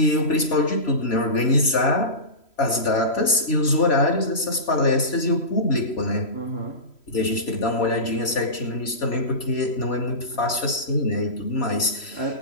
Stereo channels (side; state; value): right; late; 3.0 ms